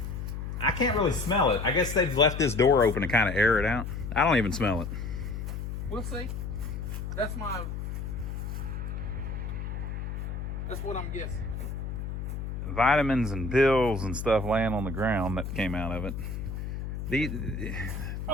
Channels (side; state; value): left; noise; hum, 5 dB below the sound